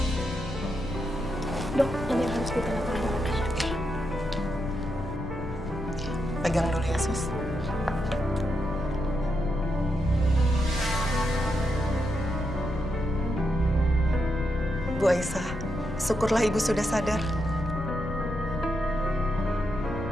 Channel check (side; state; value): left; noise; rumble, 9 dB below the sound